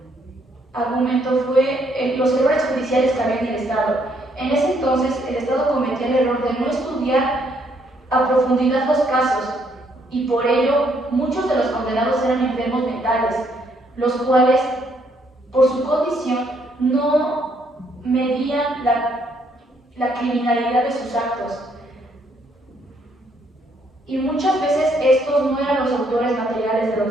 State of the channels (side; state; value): both; normal; correlation 0.70